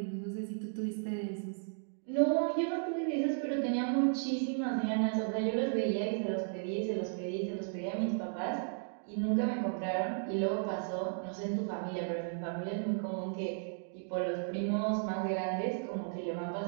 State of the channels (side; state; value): left; silent; digital silence